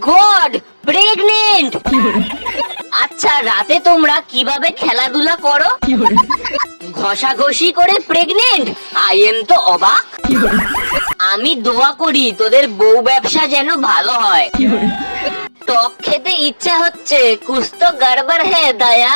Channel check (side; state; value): both; inverted; correlation -1.00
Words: গড, প্রেগনেন্ট! আচ্ছা রাতে তোমরা কিভাবে খেলাধুলা করো? ঘষাঘষি করে প্রেগনেন্ট? আই এম তো অবাক। আমি দোয়া করি তোদের বউ ব্যবসা যেন ভালো হয়। টক খেতে ইচ্ছা হচ্ছে, কুছ তো গড়বড় হে দয়া।